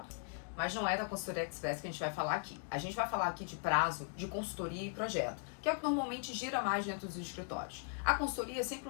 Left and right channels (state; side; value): silent; right; 52 dB below the other